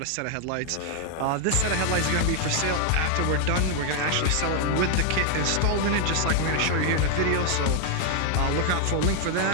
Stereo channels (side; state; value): both; different; correlation 0.00